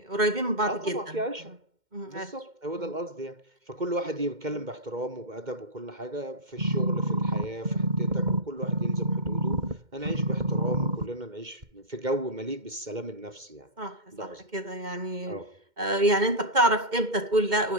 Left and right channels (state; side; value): late; left; 2.1 ms